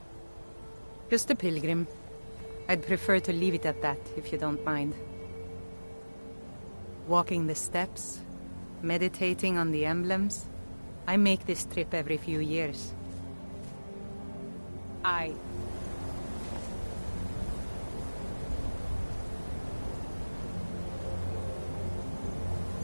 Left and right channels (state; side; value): inverted; both; correlation -1.00